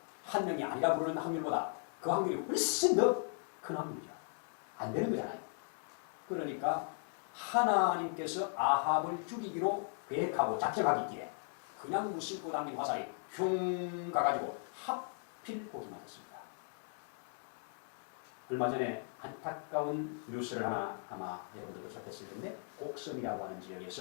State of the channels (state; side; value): silent; right; 53 dB below the other